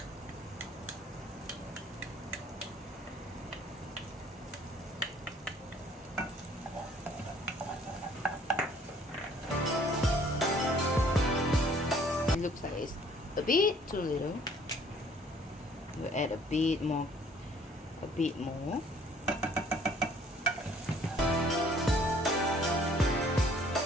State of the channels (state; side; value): normal; both; correlation 0.58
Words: It looks like it's a bit too little. We'll add a bit more.